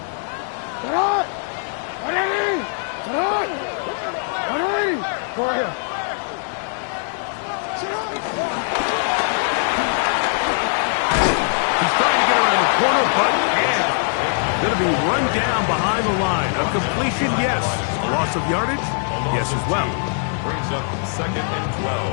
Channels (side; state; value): right; silent; 59 dB below the other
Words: Get on! Ready! Get on! Ready! Go right here. He's trying to get around the corner, but can't. Going to be run down behind the line. A completion, yes. A loss of yardage, yes as well. Brings up 2nd and